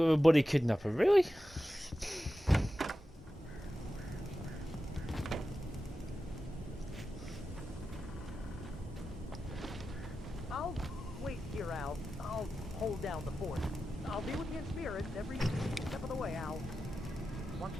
a buddy kidnapper, really?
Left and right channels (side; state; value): both; normal; correlation 0.92